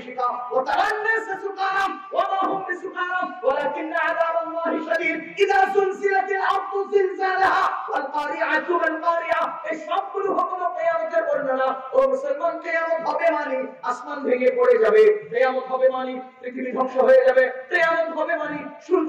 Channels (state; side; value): identical; both; correlation 1.00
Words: ওয়া তারান্নাস সুকারা ওয়া মা হুম বিসুকারা ওয়ালাকিন্না আযাবাল্লাহি শাদীদ। ইযা সুলসিলাতিল আরদু জিলজালাহা ওয়াল কারিআতু মাল কারিআ। এই সবগুলো হুকুম কিয়ামতের বর্ণনা। ও মুসলমান, কিয়ামত হবে মানে আসমান ভেঙে পড়ে যাবে, কিয়ামত হবে মানে পৃথিবী ধ্বংস হয়ে যাবে, কিয়ামত হবে মানে